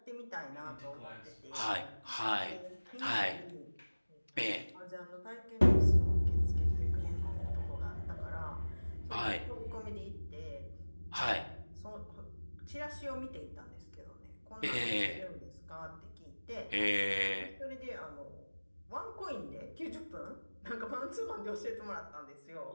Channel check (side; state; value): both; inverted; correlation -1.00